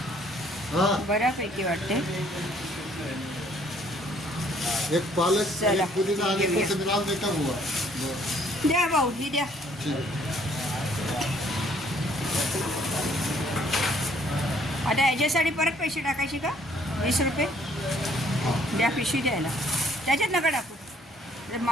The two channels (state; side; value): normal; both; correlation 0.62